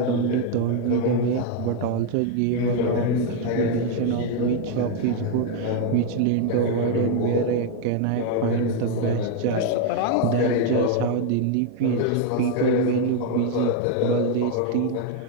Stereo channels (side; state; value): both; different; correlation 0.01